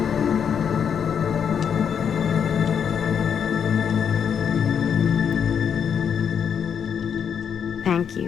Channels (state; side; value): quieter; right; 7.6 dB